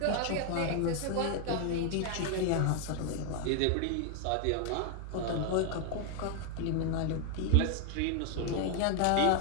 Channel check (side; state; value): both; different; correlation 0.01